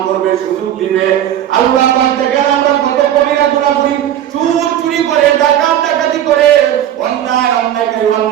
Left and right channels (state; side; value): quieter; left; 11.1 dB